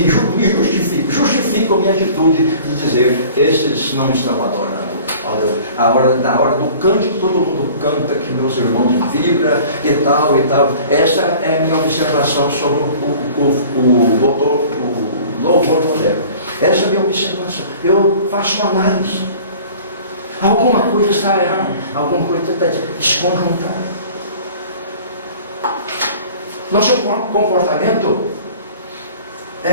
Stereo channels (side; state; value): both; inverted; correlation -0.46